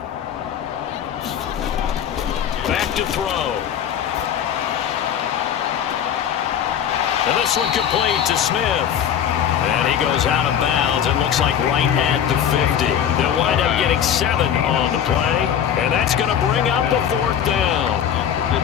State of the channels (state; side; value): quieter; right; 9.1 dB